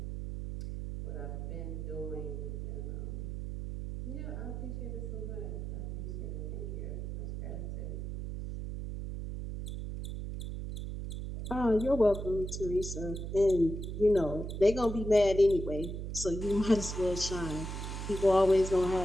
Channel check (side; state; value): right; noise; hum, 6 dB below the sound